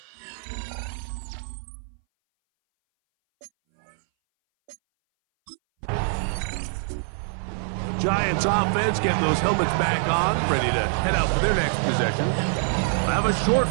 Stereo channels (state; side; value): silent; left; 60 dB below the other